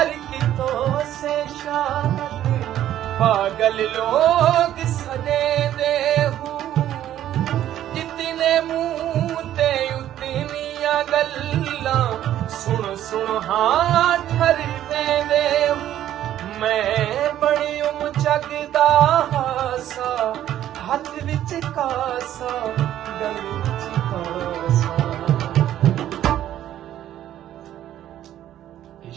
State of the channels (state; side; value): quieter; left; 12.0 dB